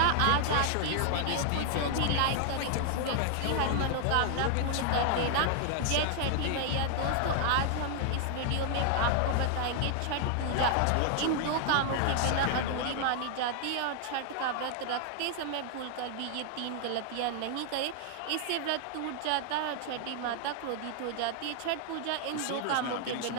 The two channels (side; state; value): both; different; correlation 0.00